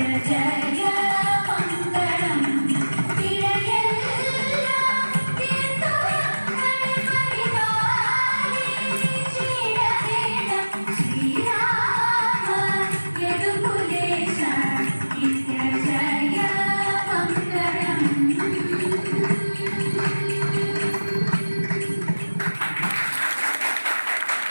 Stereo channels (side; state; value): both; inverted; correlation -1.00